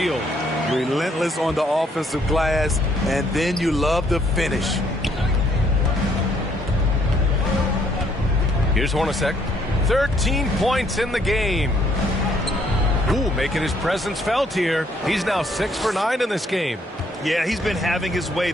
Relentless on the offensive glass, and then you love the finish. Here's Hornacek. 13 points in the game. Ooh, making his presence felt here. He's now 6 for 9 in this game. Yeah, he's been having his way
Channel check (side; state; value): both; normal; correlation 0.67